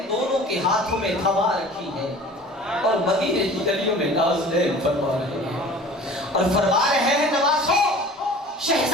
دونوں کے ہاتھوں میں تھما رکھی ہے، اور مدینے کی گلیوں میں نازنین فرما رہے ہیں، اور فرما رہے ہیں نواسوں،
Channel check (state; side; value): normal; both; correlation 0.44